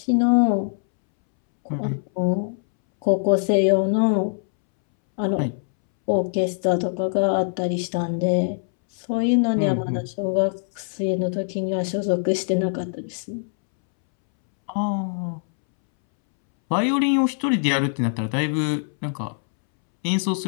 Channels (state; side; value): silent; right; 64 dB below the other